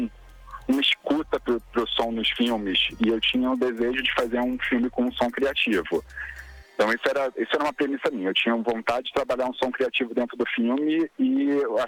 escuta pro som nos filmes, e eu tinha o desejo de fazer um filme com um som criativo. Então isso era uma premissa minha. Eu tinha vontade de trabalhar um som criativo dentro do filme e eu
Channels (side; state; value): both; identical; correlation 1.00